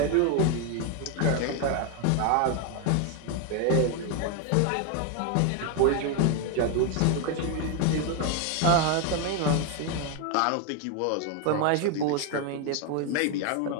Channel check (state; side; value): different; both; correlation 0.01